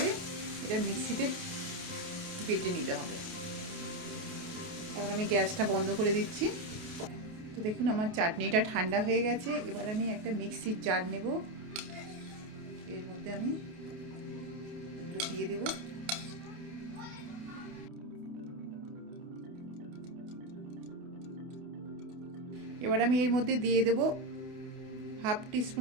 এটা মিক্সিতে বেটে নিতে হবে। তারপর আমি গ্যাসটা বন্ধ করে দিচ্ছি। তো দেখুন আমার চাটনিটা ঠান্ডা হয়ে গেছে। এবার আমি একটা মিক্সির জার নেব, এর মধ্যে আমি এগুলো দিয়ে দেব। এবার আমি এর মধ্যে দিয়ে দেব 1/2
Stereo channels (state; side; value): late; left; 28 ms